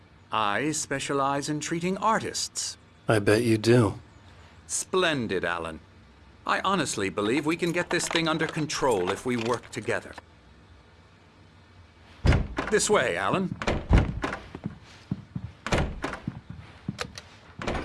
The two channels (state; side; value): identical; both; correlation 1.00